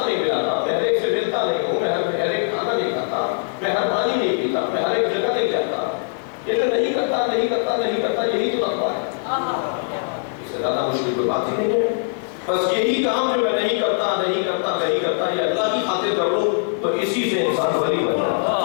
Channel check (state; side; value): silent; right; digital silence